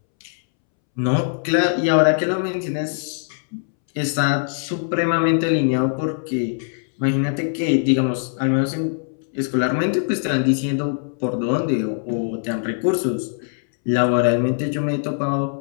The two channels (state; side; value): silent; right; 65 dB below the other